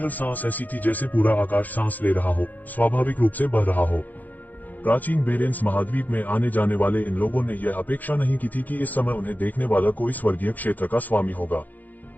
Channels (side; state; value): right; late; 0.083 ms